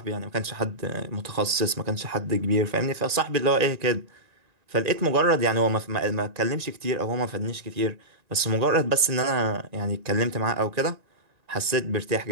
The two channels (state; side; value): late; left; 1.9 ms